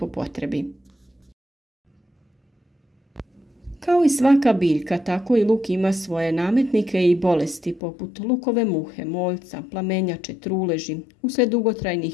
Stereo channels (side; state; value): right; drops out; at 7.8 s